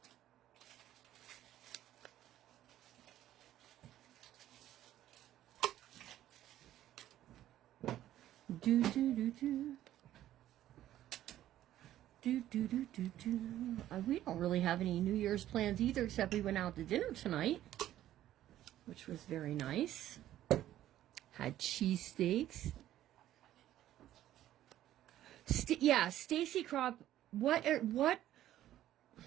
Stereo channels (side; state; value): left; quieter; 12.9 dB